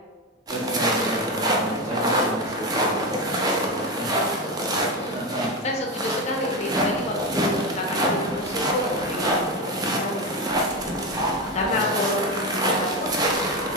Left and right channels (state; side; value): normal; both; correlation 0.15